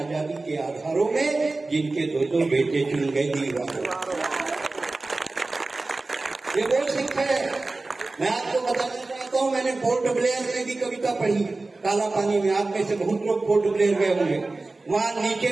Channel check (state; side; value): quieter; left; 3.3 dB